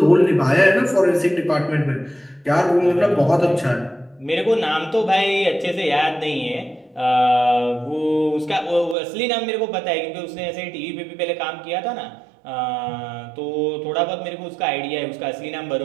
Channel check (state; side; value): drops out; left; at 9.0 s